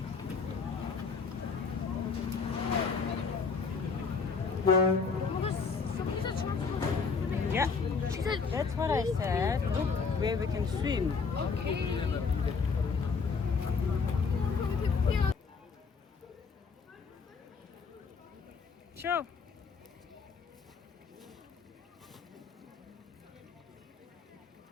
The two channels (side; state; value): right; quieter; 5.1 dB